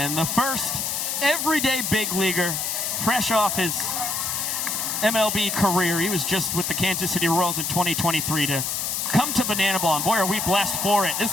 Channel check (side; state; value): left; noise; hiss, 1 dB below the sound